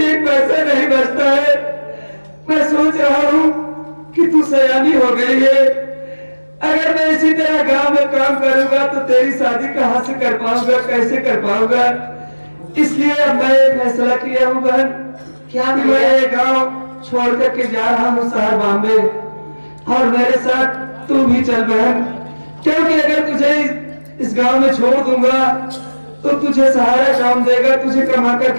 एक पैसा नहीं बचता है। मैं सोच रहा हूँ कि तू सयानी हो गई है, अगर मैं इसी तरह गांव में काम करूंगा तो तेरी शादी कहाँ से कर पाऊंगा, कैसे कर पाऊंगा? इसलिए अब मैं फैसला किया हूँ बहन, क्या मैं ये गांव छोड़ करके जा रहा हूँ शहर बॉम्बे, और मेरे साथ तू भी चल बहन, क्योंकि अगर तुझे इस गांव में छोड़ दूंगा तो तुझे सहारा कौन देगा, तुझे कमाकर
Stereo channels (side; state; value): both; inverted; correlation -1.00